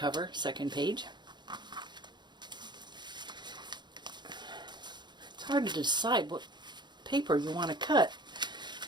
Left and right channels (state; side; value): late; left; 0.21 ms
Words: second page. It's hard to decide what paper you want to cut